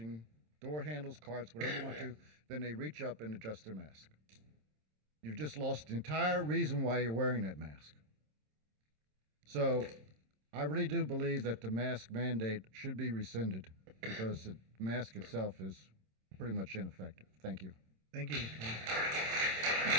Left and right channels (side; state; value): left; late; 27 ms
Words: door handles, carts, whatever you want to, then they reach up and adjust their mask. You've just lost the entire reason why you're wearing that mask. So I really do believe that the mask mandate should be rescinded because the mask itself is pretty much ineffective. Thank you. Thank you.